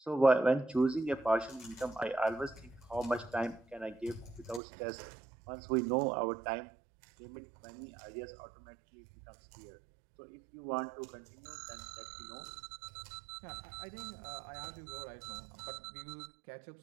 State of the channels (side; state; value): left; drops out; at 4.6 s